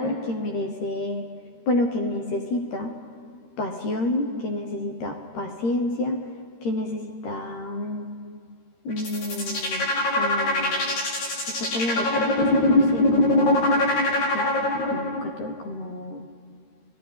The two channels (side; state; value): right; late; 13 ms